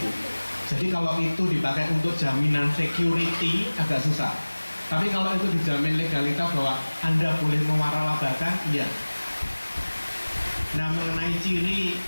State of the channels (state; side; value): inverted; both; correlation -1.00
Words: Jadi kalau itu dipakai untuk jaminan security agak susah. Tapi kalau itu dijamin legalitas bahwa Anda boleh mewaralabakan, iya. Nah mengenai ciri